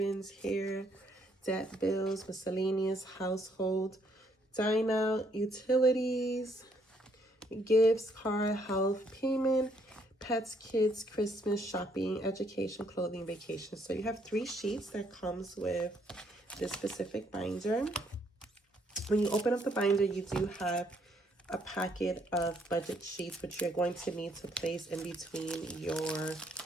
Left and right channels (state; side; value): normal; both; correlation 0.69